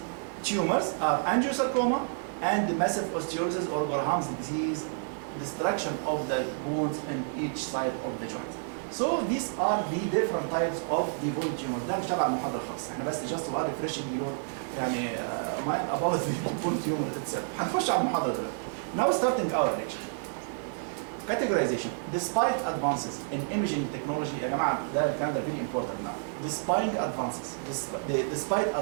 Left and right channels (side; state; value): left; silent; digital silence